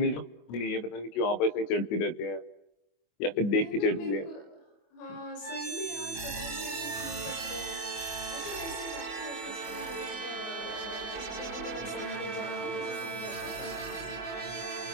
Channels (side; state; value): right; late; 24 ms